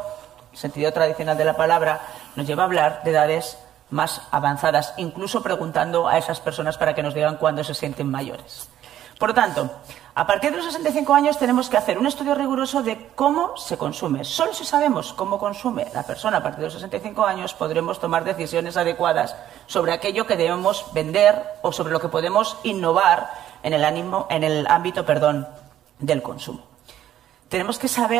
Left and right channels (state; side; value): quieter; left; 11.8 dB